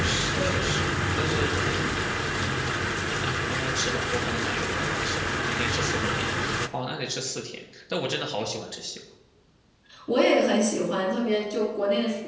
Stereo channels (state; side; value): identical; both; correlation 1.00